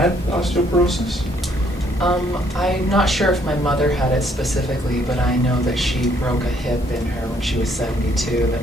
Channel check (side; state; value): both; normal; correlation 0.66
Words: osteoporosis? I'm not sure if my mother had it specifically, but I know that she broke a hip in her when she was 72